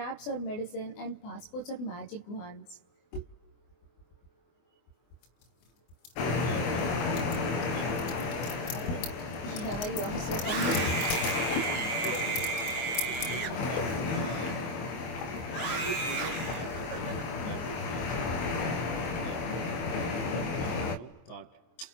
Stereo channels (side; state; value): right; late; 24 ms